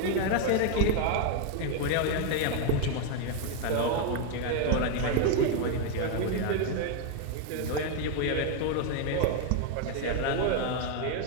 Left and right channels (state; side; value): different; both; correlation 0.01